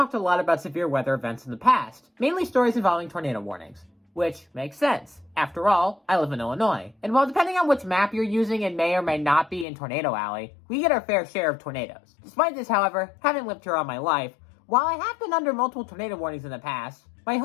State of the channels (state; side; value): drops out; right; at 9.7 s